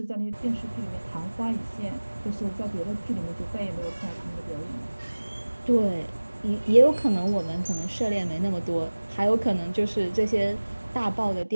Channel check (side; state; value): both; inverted; correlation -1.00